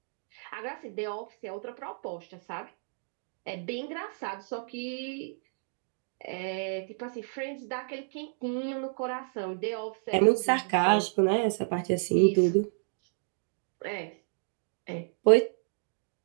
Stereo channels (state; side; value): silent; left; digital silence